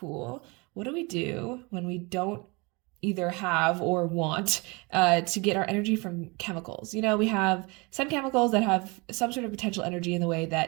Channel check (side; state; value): left; quieter; 27.5 dB